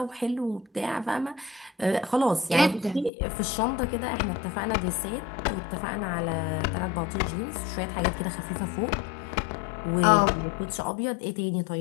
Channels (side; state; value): right; drops out; at 3.1 s